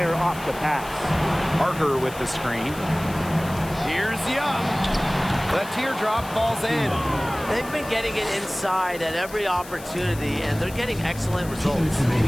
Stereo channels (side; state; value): left; noise; hiss, 16 dB below the sound